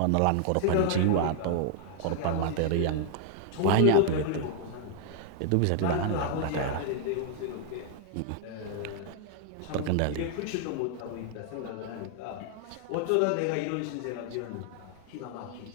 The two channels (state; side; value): different; both; correlation 0.00